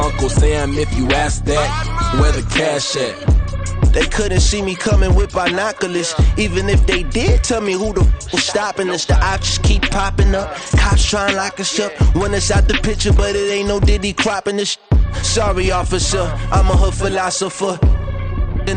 Sam if you ask that. Where the cash at? They couldn't see me coming with binoculars. Even if they did tell me who the was stopping us, the options keep popping up. Cops trying to lock us up when it's out the picture, but it ain't no Diddy cropping this. Sorry, officer, I'm a hood philosopher.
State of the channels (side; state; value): both; identical; correlation 1.00